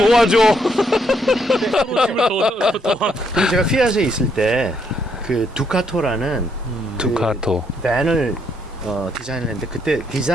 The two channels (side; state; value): both; normal; correlation 0.73